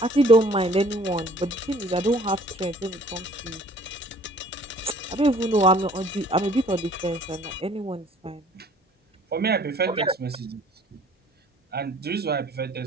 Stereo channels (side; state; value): both; normal; correlation 0.54